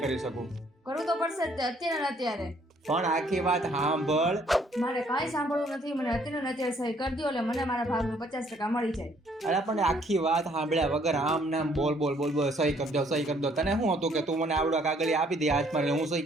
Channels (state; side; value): normal; both; correlation 0.64